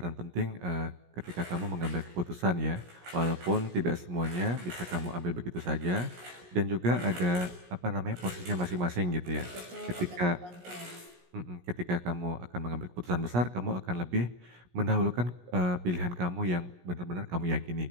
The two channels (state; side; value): late; left; 17 ms